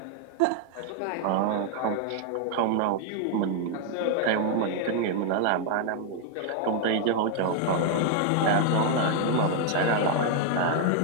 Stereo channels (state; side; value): different; both; correlation 0.00